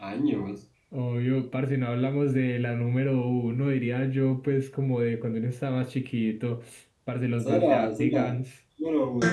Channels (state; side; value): identical; both; correlation 1.00